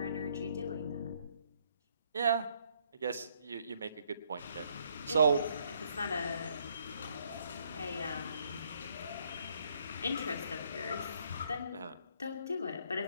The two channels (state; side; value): inverted; both; correlation -0.69